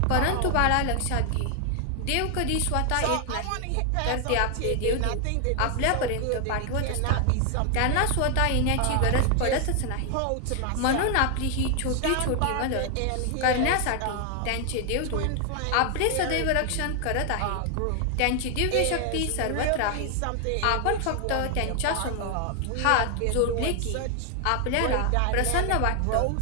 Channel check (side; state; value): both; different; correlation 0.00